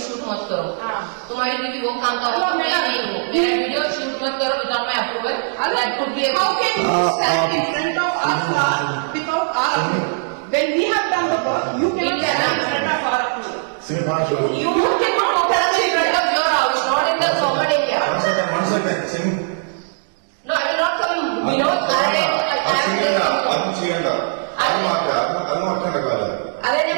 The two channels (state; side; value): silent; left; digital silence